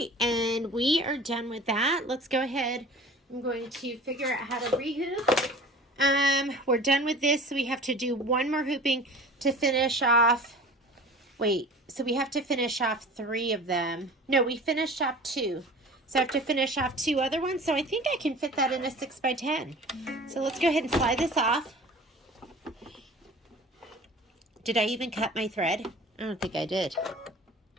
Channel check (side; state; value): both; normal; correlation 0.42